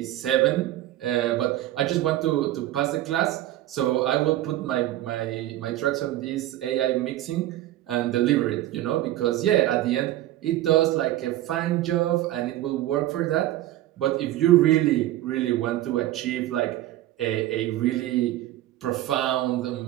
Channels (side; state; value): left; quieter; 14.6 dB